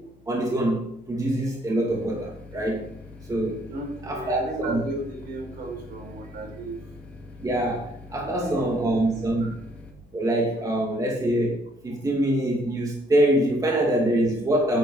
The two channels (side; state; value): left; noise; hum, 28 dB below the sound